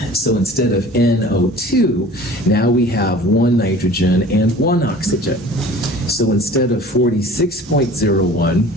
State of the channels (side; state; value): both; normal; correlation 0.44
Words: So instead of NO2, now we have 1 nitrogen and 1 oxygen. So instead of 46.01,